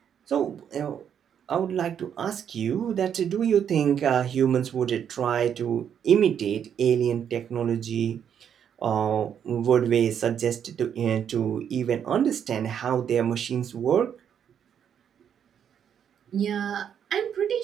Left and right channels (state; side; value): quieter; left; 8.5 dB